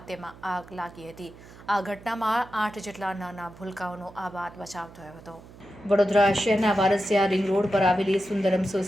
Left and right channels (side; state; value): right; noise; hum, 20 dB below the sound